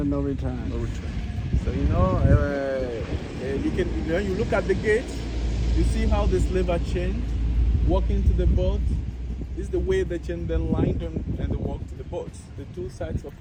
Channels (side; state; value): both; identical; correlation 1.00